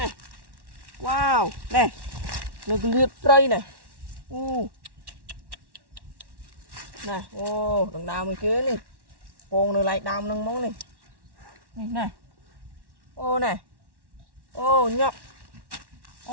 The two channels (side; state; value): left; late; 1.1 ms